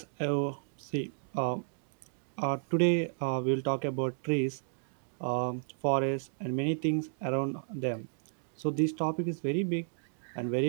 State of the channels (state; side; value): silent; left; digital silence